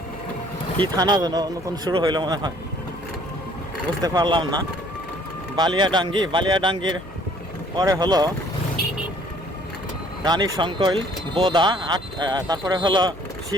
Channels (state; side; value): noise; left; hum, 21 dB below the sound